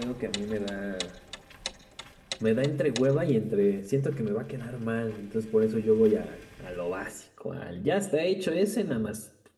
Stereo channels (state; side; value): identical; both; correlation 1.00